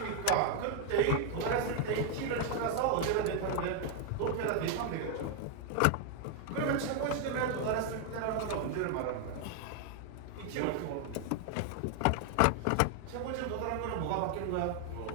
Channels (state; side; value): different; both; correlation 0.00